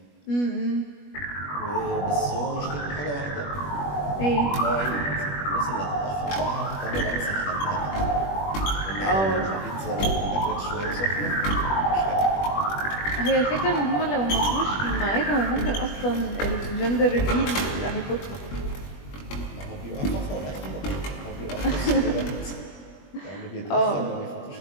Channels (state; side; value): late; right; 21 ms